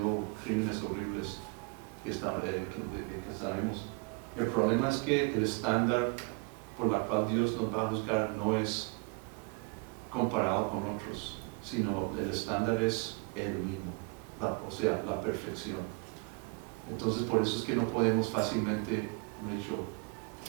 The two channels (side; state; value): left; quieter; 30.2 dB